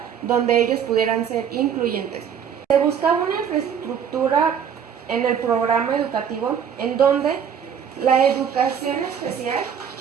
donde ellos pudieran ser incluyentes. Se buscaba una infraestructura en el programa educativo en donde la educación especial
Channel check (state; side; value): quieter; left; 8.0 dB